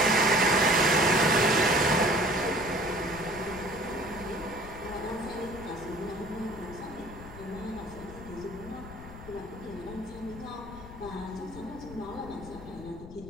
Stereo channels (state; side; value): noise; left; rumble, 15 dB below the sound